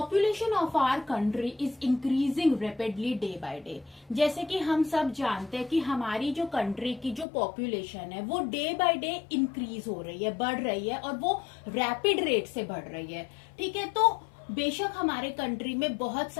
of our country is increasing rapidly day by day. जैसे कि हम सब जानते हैं कि हमारी जो कंट्री की जो पॉपुलेशन है वो डे बाय डे इंक्रीज हो रही है, बढ़ रही है, और वो रैपिड रेट से बढ़ रही है। ठीक है, तो बेशक हमारे कंट्री में बहुत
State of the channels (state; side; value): drops out; right; at 7.2 s